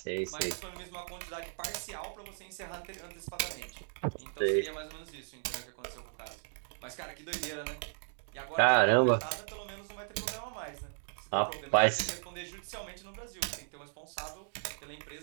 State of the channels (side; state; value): left; silent; digital silence